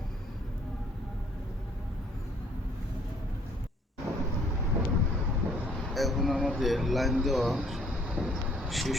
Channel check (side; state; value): both; normal; correlation 0.62